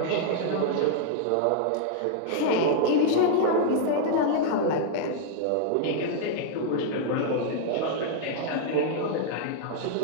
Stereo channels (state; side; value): different; both; correlation -0.01